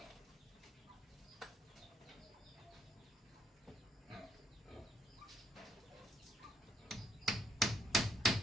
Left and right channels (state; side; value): normal; both; correlation 0.72